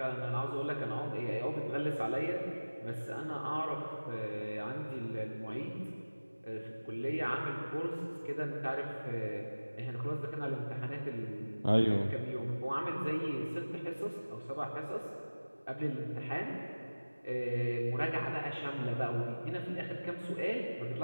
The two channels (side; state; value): both; inverted; correlation -1.00